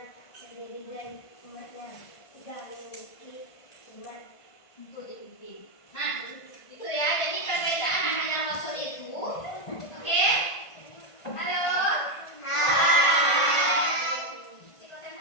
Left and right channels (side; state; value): right; late; 1.5 ms